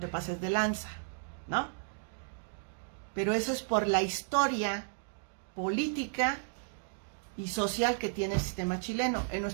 pases de lanza, ¿no? Pero eso es por la historia política y social que tiene el sistema chileno. En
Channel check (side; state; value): left; silent; digital silence